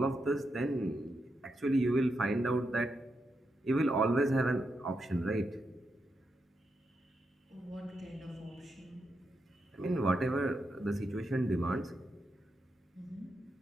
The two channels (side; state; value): both; normal; correlation 0.84